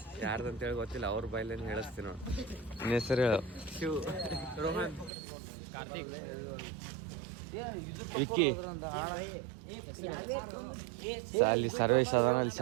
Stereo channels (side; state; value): left; drops out; at 5.1 s